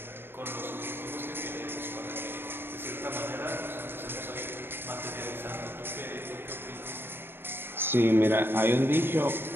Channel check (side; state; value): left; late; 0.11 ms